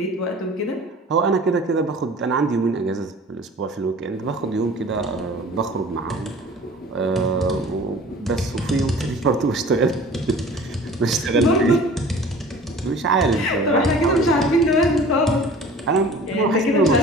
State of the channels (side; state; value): both; normal; correlation 0.45